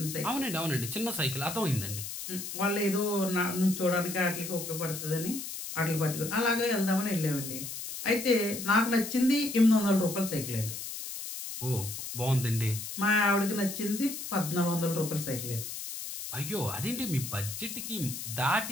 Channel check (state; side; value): noise; left; hiss, 7 dB below the sound